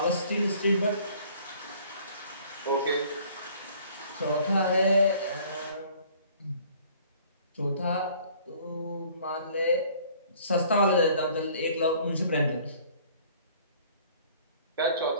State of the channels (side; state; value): both; inverted; correlation -0.55